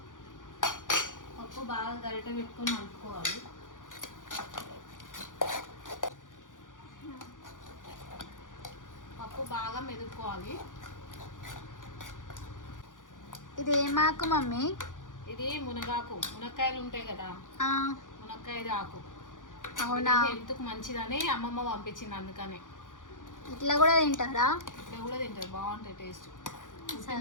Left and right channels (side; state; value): right; late; 0.88 ms